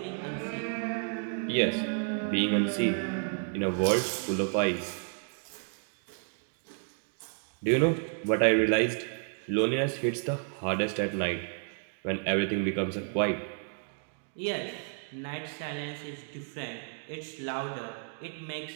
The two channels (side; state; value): left; silent; 55 dB below the other